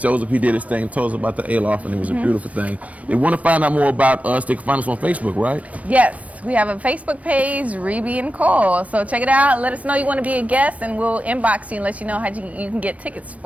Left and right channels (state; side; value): late; left; 0.067 ms